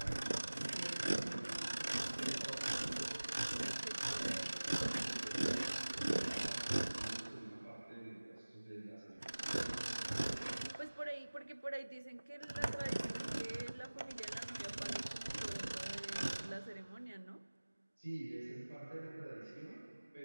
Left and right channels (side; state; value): both; inverted; correlation -1.00